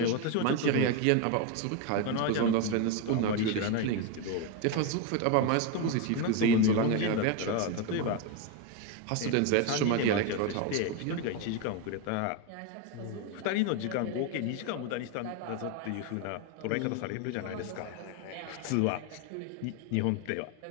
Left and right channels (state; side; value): different; both; correlation 0.02